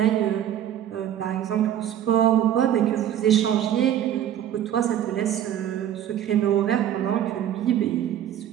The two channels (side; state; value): left; quieter; 10.7 dB